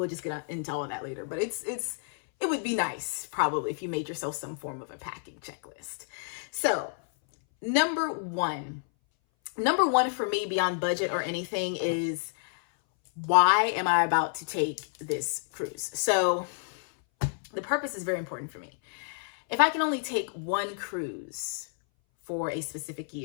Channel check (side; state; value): right; silent; 58 dB below the other